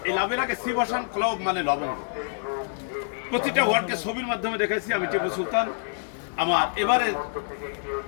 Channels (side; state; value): right; silent; digital silence